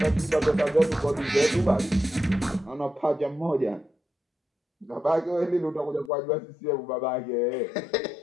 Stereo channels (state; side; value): drops out; right; at 6.1 s